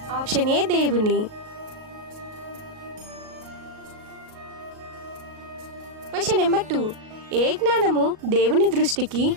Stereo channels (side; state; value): left; late; 38 ms